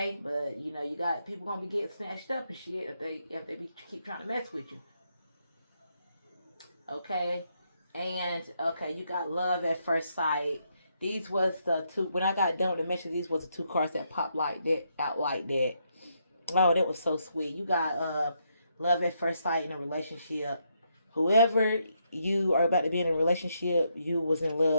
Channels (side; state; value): both; inverted; correlation -0.78